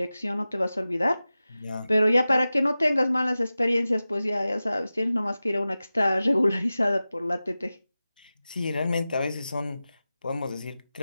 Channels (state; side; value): inverted; both; correlation -0.95